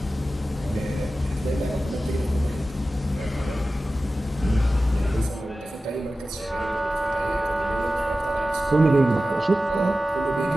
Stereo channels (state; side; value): normal; both; correlation 0.95